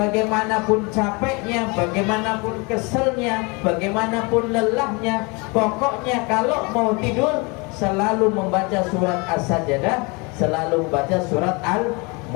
capeknya, bagaimanapun keselnya, bagaimanapun lelahnya, pokoknya kalau mau tidur selalu membaca surat As-Sajdah, selalu membaca surat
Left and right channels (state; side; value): quieter; right; 28.8 dB